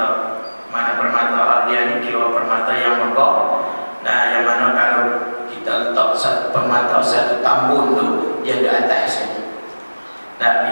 Mana permata dia ni kira permata yang megah. Nah, yang mana kalau kita letak satu permata, satu tambun tu dia di atas saja.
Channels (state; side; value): inverted; both; correlation -1.00